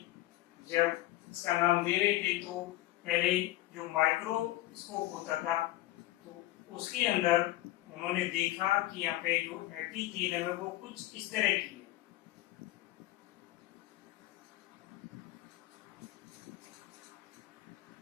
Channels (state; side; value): quieter; right; 16.4 dB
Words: जब इसका नाम दे रहे थे तो पहले जो माइक्रोस्कोप होता था तो उसके अंदर उन्होंने देखा कि यहाँ पे जो एपिथेलियम है वो कुछ इस तरह की है।